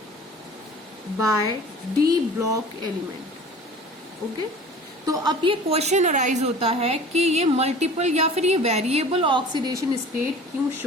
by D block element. Okay तो अब ये क्वेश्चन अराइज होता है कि ये मल्टीपल या फिर ये वेरिएबल ऑक्सीडेशन स्टेट क्यों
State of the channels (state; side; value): normal; both; correlation 0.43